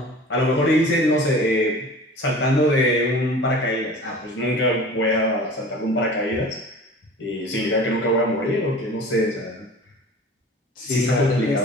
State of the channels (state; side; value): normal; both; correlation 0.41